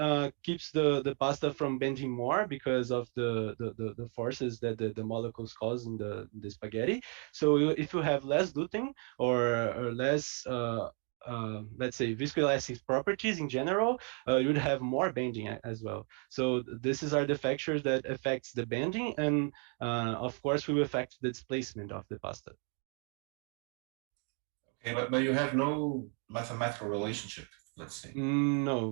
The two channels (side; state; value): left; quieter; 39.9 dB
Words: keeps the pasta from bending more because of the forces that the molecules cause in the spaghetti. So if you have less gluten or less let's say viscoelastic properties in general, you would have more bending as well. So these are the factors that affects the bending, and of course will affect the displacement of the pasta. Okay, but you have no mathematical relationship, let's say.